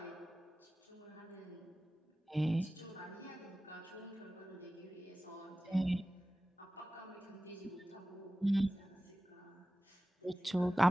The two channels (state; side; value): normal; both; correlation 0.96